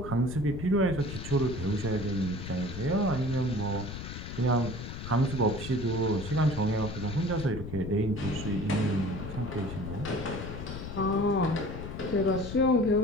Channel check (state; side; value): noise; left; rumble, 8 dB below the sound